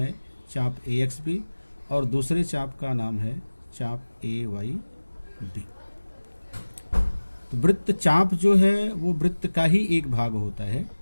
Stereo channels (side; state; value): both; inverted; correlation -1.00